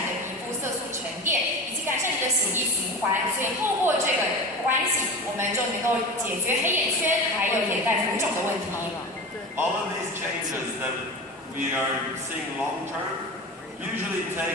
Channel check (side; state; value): both; normal; correlation 0.30